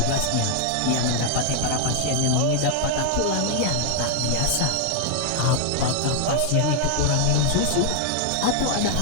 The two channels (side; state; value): both; different; correlation -0.01